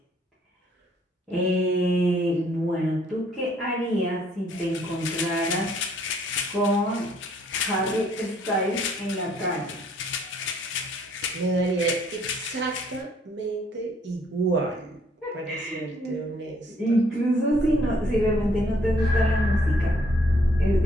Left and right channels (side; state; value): both; normal; correlation 0.64